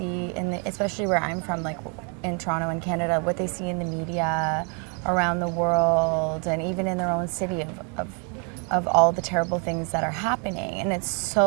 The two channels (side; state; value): left; quieter; 37.6 dB